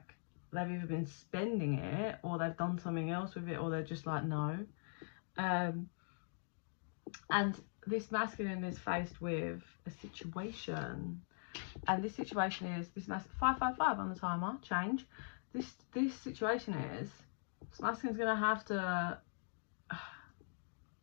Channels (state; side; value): silent; right; digital silence